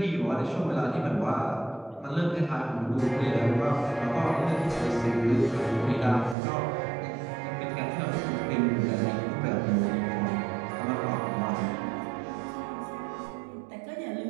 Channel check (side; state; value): left; drops out; at 6.4 s